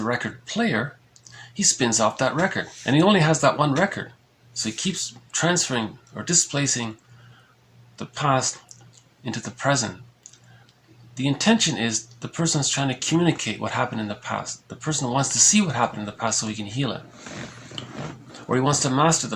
record player, he spins off that record, and he only has that one record. So he keeps transferring or displacing the past into the present. The intention is the person is trying to communicate what happened in the past. The person wants to see what happened in the past so he can heal it. Or he wants to master the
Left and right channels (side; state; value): both; identical; correlation 1.00